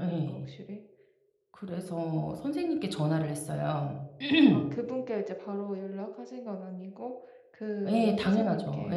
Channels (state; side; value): identical; both; correlation 1.00